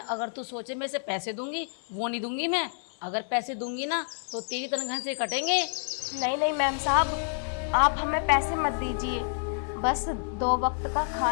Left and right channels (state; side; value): silent; right; 59 dB below the other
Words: तू सोचे मैं इसे पैसे दूंगी, वो नहीं दूंगी मैं। अगर पैसे दूंगी ना तो तेरी तनख्वाह से कटेंगे। नहीं नहीं मैम साहब, आप हमें पैसे मत दीजिए। बस 2 वक्त का